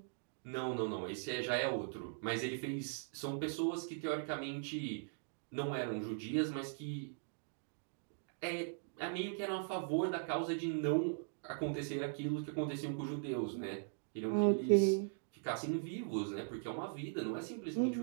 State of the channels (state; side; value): silent; left; digital silence